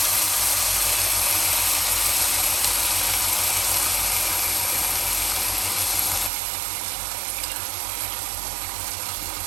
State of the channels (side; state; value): left; drops out; at 6.3 s